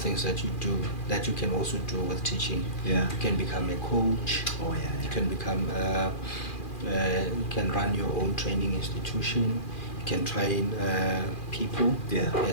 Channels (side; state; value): right; late; 2.4 ms